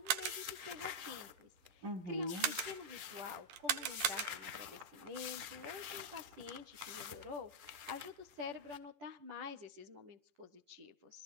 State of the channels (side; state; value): left; late; 11 ms